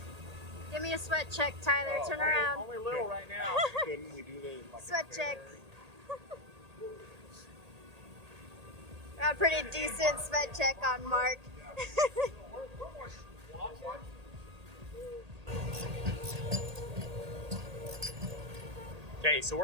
Give me a sweat check, Tyler. Turn around. Only little right now. Couldn't we do the Sweat check. Got a pretty decent sweat check on Mark. Okay, so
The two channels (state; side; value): late; left; 1.8 ms